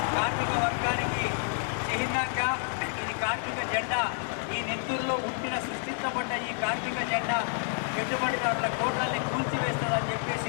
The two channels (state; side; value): silent; right; 58 dB below the other